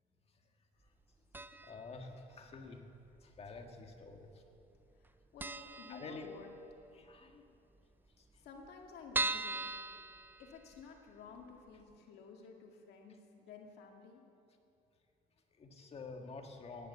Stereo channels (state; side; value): normal; both; correlation -0.19